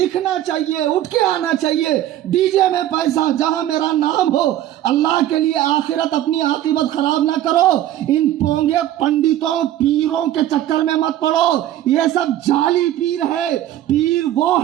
چاہیے، اٹھ کے آنا چاہیے. ڈی جے میں پیسہ، جہاں میرا نام ہو. اللہ کے لیے آخرت اپنی عاقبت خراب نہ کرو. ان پونگے پنڈتوں پیروں کے چکر میں مت پڑو. یہ سب جعلی پیر ہے. پیر وہ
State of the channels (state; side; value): quieter; left; 12.9 dB